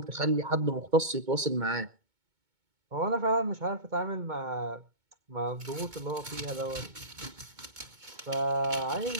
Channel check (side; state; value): left; late; 2.2 ms